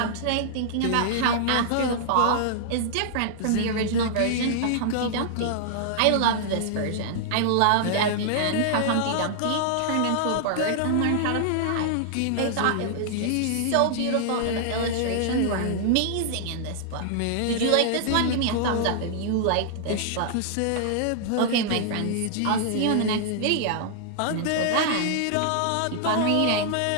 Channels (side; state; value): both; different; correlation -0.01